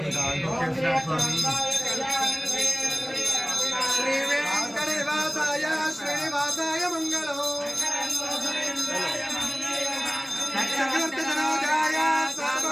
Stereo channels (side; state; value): both; identical; correlation 1.00